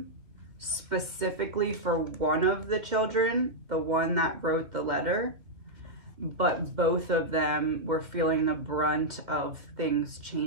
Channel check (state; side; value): late; left; 2.2 ms